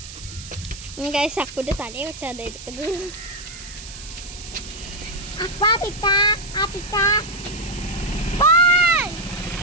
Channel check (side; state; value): right; noise; hiss, 14 dB below the sound